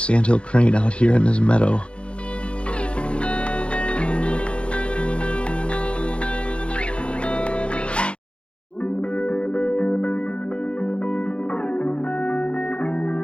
crane out here in this meadow.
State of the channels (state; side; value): late; right; 0.058 ms